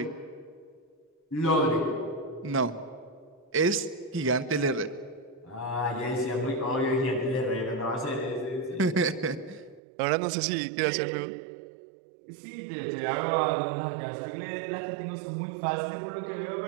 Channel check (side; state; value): left; drops out; at 9.8 s